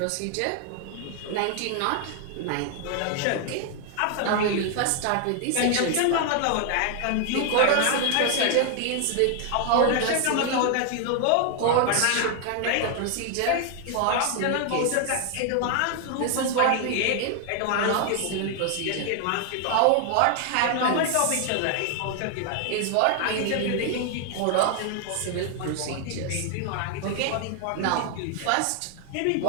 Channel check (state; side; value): different; both; correlation 0.00